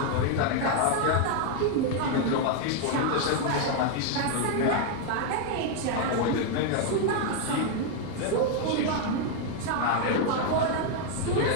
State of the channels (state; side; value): different; both; correlation 0.00